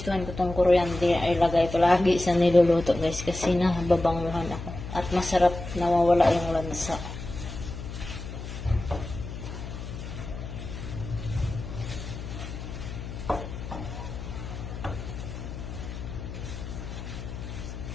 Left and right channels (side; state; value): left; noise; hum, 9 dB below the sound